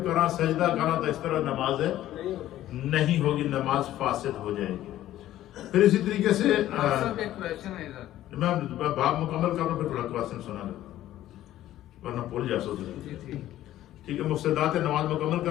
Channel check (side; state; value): right; quieter; 13.6 dB